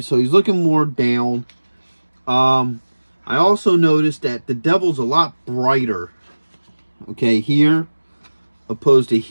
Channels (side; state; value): both; inverted; correlation -1.00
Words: so he's looking more down. I also noticed that the devil's a lot brighter. Okay, here opposed to